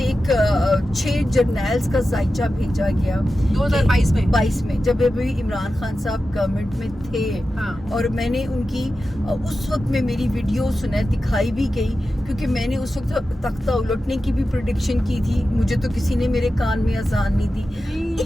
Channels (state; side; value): normal; both; correlation 0.92